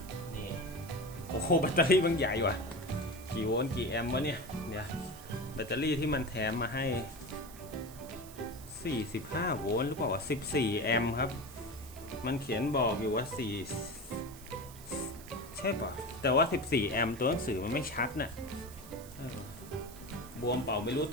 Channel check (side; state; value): right; noise; hiss, 18 dB below the sound